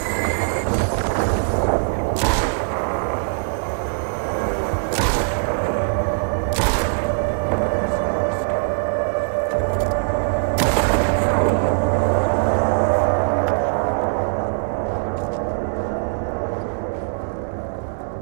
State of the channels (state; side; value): silent; left; 65 dB below the other